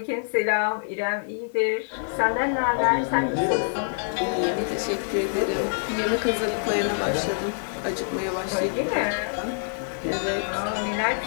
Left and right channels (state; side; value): silent; right; digital silence